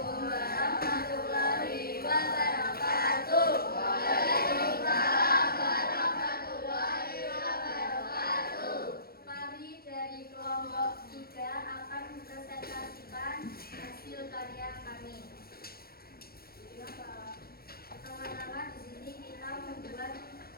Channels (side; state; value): right; late; 0.44 ms